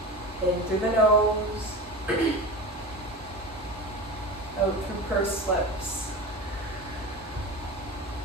In through the nose, out through pursed lips.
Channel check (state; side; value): normal; both; correlation 0.29